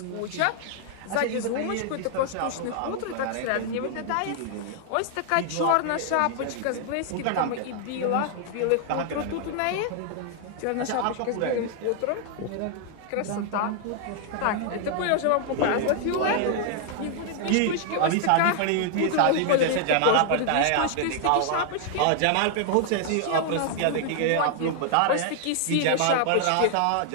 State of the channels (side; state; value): both; different; correlation 0.00